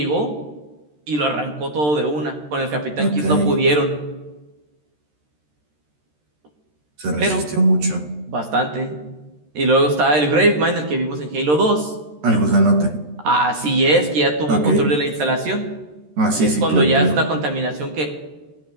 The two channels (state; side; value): late; left; 13 ms